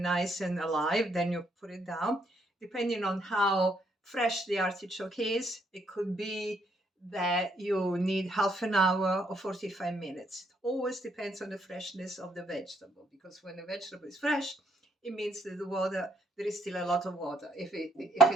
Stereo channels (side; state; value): both; normal; correlation 0.71